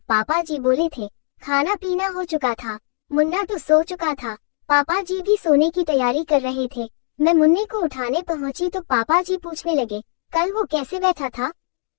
पापा जी बोले थे। खाना पीना हो चुका था, मुन्ना तो सो चुका था, पापा जी भी सोने की तैयारी कर रहे थे। मैं मुन्ने को उठाने पहुंची तो पापा जी पूछने लगे, कल वो कैसे बैठा था,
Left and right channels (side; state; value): right; silent; digital silence